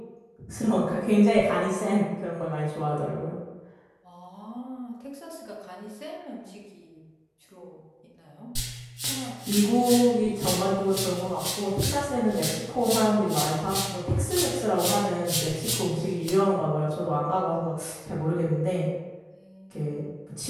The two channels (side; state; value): both; identical; correlation 1.00